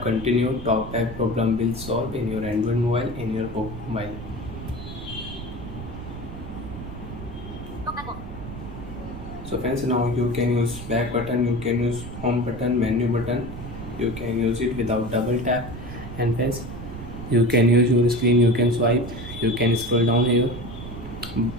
continue. TalkBack problem will solve in your Android mobile, in your Poco mobile. So friends, now you can use back button, you can use home button, menu button, you can use it without double tap. And friends, you can use your screen, you can swipe, you can scroll down here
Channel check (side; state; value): right; noise; rumble, 10 dB below the sound